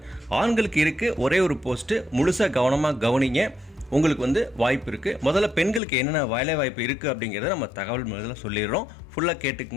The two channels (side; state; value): right; drops out; at 5.8 s